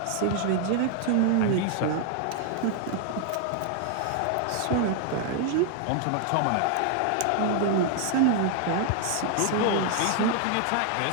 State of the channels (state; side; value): different; both; correlation 0.00